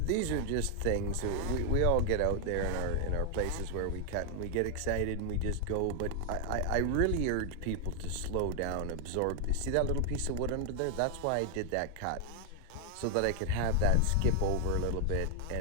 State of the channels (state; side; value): different; both; correlation 0.00